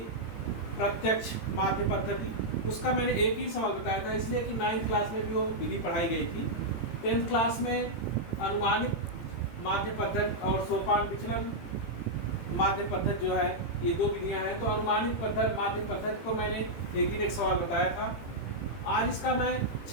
प्रत्यक्ष माध्य पद्धति, उसका मैंने एक ही सवाल बताया था इसलिए कि 9th क्लास में भी वो विधि पढ़ाई गई थी। 10th क्लास में अनुमानित माध्य पद्धति और सोपान विचलन माध्य पद्धति जो है, ये 2 विधियां हैं। तो अनुमानित पद्धति माध्य पद्धति को मैंने एक सवाल बताया था। आज इसका मैं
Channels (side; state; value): right; late; 18 ms